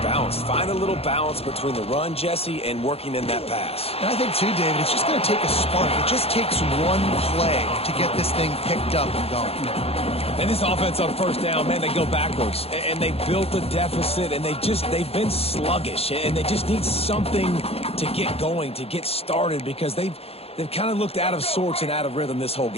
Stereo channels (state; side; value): late; right; 0.29 ms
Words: balanced. Find a little balance between the run, Jesse, and working in that pass. And I think, too, David, it's just going to take a spark. It just takes one play to get this thing picked up and going. And this offense on first down, man, they go backwards. And they built a deficit, and they've been sluggish. And they just need something to get going, to get started, because they've kind of looked out of sorts and out of rhythm this whole